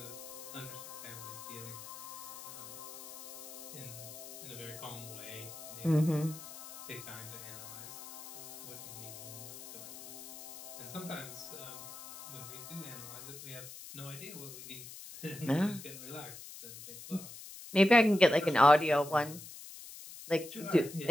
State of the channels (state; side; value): noise; left; hiss, 13 dB below the sound